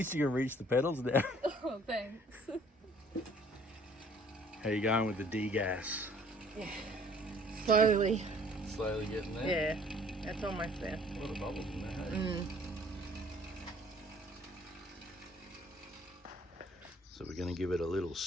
you can reach the pedals now. Oh, thanks. How you going with the D-gas? Yeah. Slowly. Slowly getting there? Yeah, that's almost there. A lot of bubbles in there, hey? So we're going to give it a little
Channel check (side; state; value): both; normal; correlation 0.56